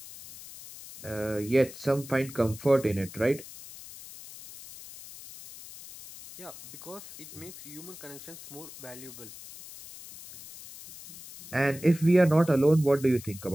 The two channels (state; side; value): noise; left; hiss, 15 dB below the sound